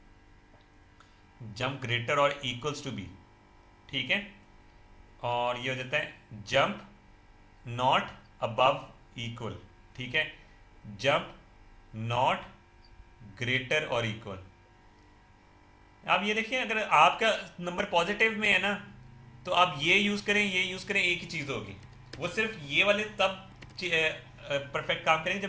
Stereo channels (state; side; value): identical; both; correlation 1.00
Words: जंप ग्रेटर और इक्वल्स टू बी। ठीक है, और ये हो जाता है जंप नॉट अबव इक्वल। ठीक है, जंप नॉट ग्रेटर और इक्वल। आप ये देखिए, अगर आपका नंबर पॉजिटिव में है ना, तो आप ये यूज़ करें, ये यूज़ करें, एक ही चीज़ होगी। वो सिर्फ ये वाले तब परफेक्ट काम करेंगे